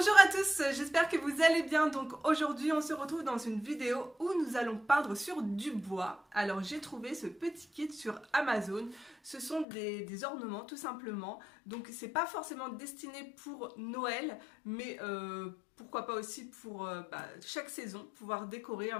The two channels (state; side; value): drops out; right; at 9.7 s